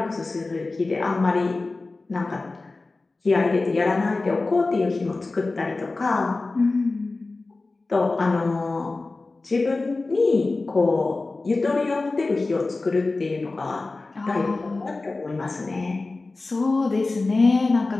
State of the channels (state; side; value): quieter; right; 3.4 dB